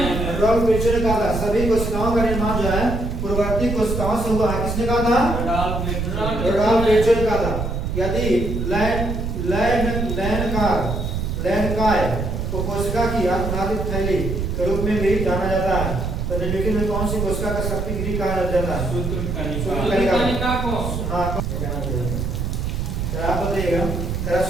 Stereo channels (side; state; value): right; noise; rumble, 2 dB below the sound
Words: रुडोल्फ विर्चो ने कहा था सभी कोशिकाओं का निर्माण जो है पूर्ववर्ती कोशिकाओं से हुआ है। किसने कहा था? रुडोल्फ विर्चो ने कहा था। यदि लैंडकाय को कोशिका की आत्मघाती थैली के रूप में भी जाना जाता है, तो निम्नलिखित में कौन सी कोशिका का शक्ति गृह कहा जाता है? सूत्रकणिका को। हाँ, आप बताइएगा